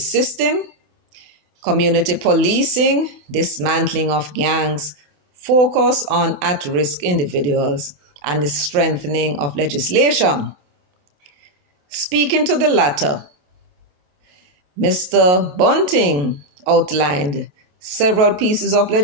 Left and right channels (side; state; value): left; late; 28 ms